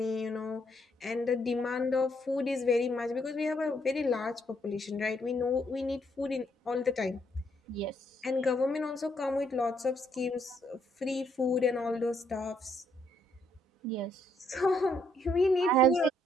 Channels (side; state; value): both; normal; correlation 0.72